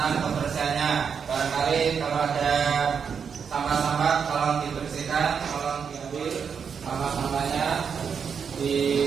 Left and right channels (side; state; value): left; quieter; 6.7 dB